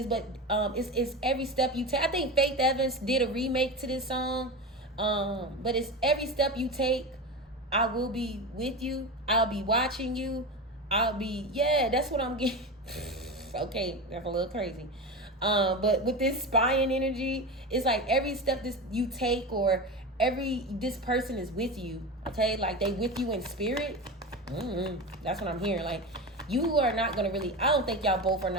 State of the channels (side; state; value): both; normal; correlation 0.24